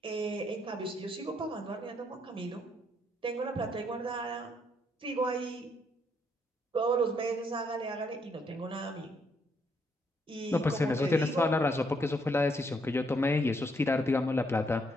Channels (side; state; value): both; normal; correlation 0.73